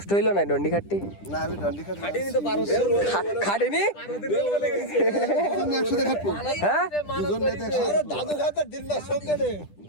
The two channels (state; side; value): late; right; 10 ms